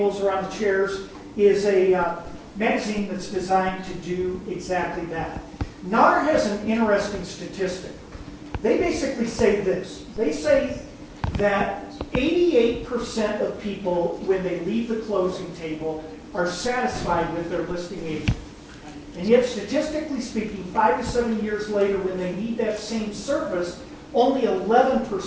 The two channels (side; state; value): both; identical; correlation 1.00